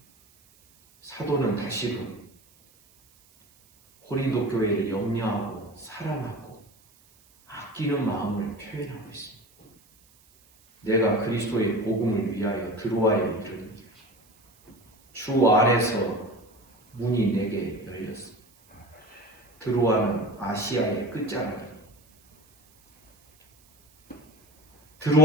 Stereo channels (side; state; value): right; noise; hiss, 30 dB below the sound